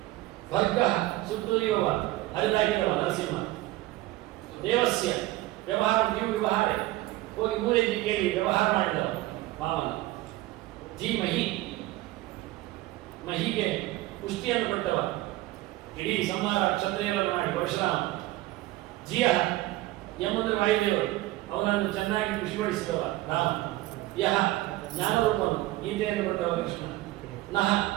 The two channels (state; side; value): quieter; left; 17.7 dB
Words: ವರ್ಗ ಸುತ್ತುರಿಯುವ ಹರಿದಾಗಿರುವ ನರಸಿಂಹ ದೇವಸ್ಯ ವ್ಯವಹಾರ ನೀವು ವ್ಯವಹಾರ ಹೋಗಿ ಮೂಲೆಯಲ್ಲಿ ಕೇಳಿ ವ್ಯವಹಾರ ಮಾಡಿದವ ಮಾವನ ಧೀಮಹಿ ಮಹಿಗೆ ಪುಷ್ಟಿಯನ್ನು ಕೊಟ್ಟವ ಇಡೀ ಸಂಹಾರ ಕ್ಷತ್ರಿಯರನ್ನು ಮಾಡಿ ಪರಶುರಾಮ ಜಿಯ ಎಂಬುದು ವಾಯುದೇವರು ಅವನನ್ನು ಚೆನ್ನಾಗಿ ಖುಷಿಪಡಿಸಿದವ ರಾಮ ಯಹ ಜ್ಞಾನರೂಪನು ಗೀತೆಯನ್ನು ಕೊಟ್ಟವ ಕೃಷ್ಣ ನಹ